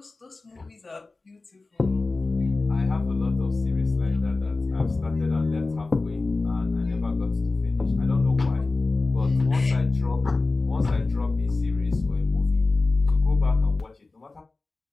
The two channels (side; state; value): right; quieter; 3.5 dB